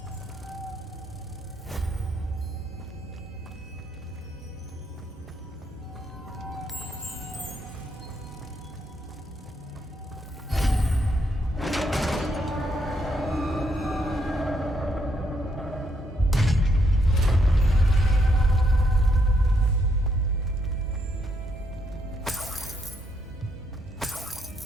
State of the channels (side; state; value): both; normal; correlation 0.76